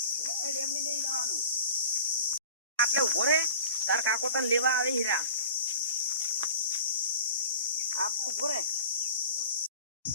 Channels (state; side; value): inverted; both; correlation -0.39